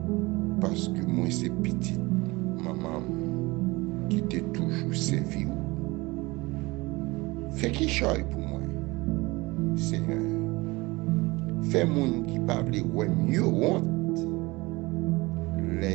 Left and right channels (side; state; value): left; quieter; 22.8 dB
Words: Parce que moi, c'est petite maman qui t'est toujours servi. Fais qui choisit pour moi, Seigneur. Fais moun qui parle ouais mieux honte.